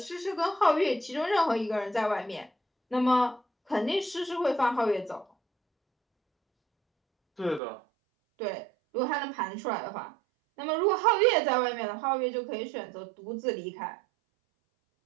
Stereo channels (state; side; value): drops out; left; at 7.6 s